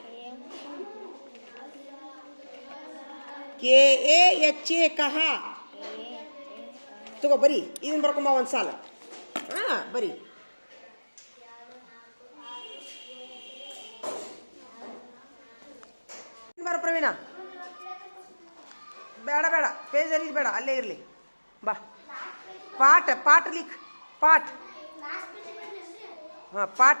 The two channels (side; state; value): both; inverted; correlation -1.00